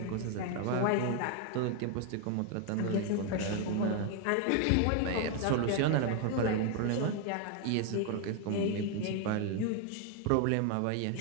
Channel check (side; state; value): both; different; correlation 0.01